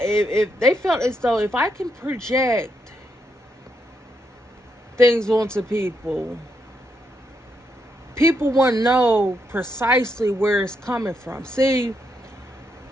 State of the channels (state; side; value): normal; both; correlation 0.79